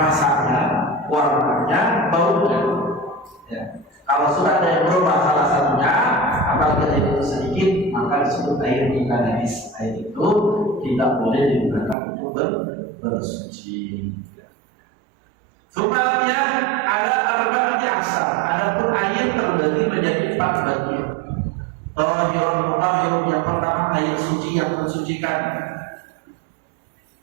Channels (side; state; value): left; drops out; at 12.0 s